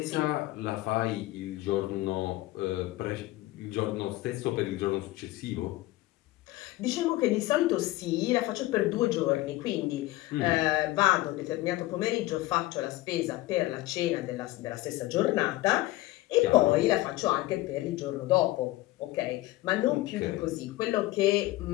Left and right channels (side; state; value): right; quieter; 18.0 dB